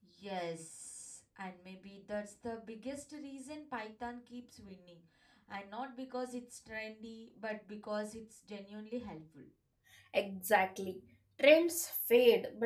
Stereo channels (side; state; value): both; identical; correlation 1.00